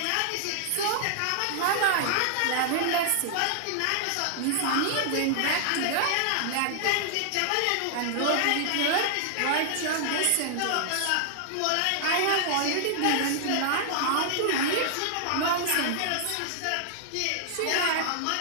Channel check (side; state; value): both; different; correlation -0.01